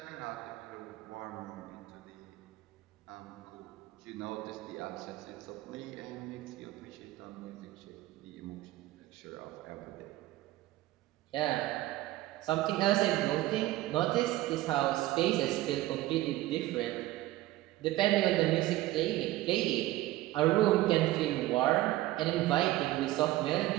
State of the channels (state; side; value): quieter; left; 16.5 dB